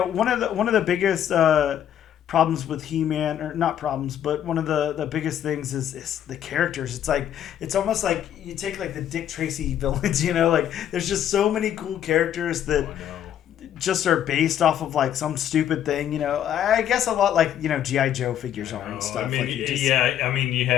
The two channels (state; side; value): quieter; right; 10.3 dB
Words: one of the biggest problems with He-Man, or not problems, but one of the biggest things is the characters. It's almost like you take like the Dick Tracy villains, like there's just so many cool characters that just are based off of like some stupid thing, I guess a lot like, G.I. Joe figures are and stuff. You